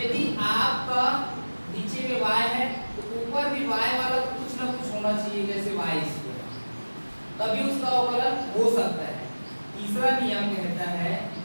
आपका नीचे में y है तो ऊपर भी y वाला कुछ ना कुछ होना चाहिए, जैसे y², तभी उसका अवकलन हो सकता है। तीसरा नियम कहता है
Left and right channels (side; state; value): both; inverted; correlation -1.00